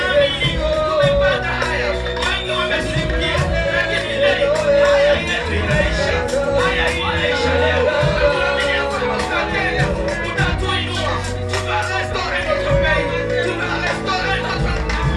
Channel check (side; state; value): both; identical; correlation 1.00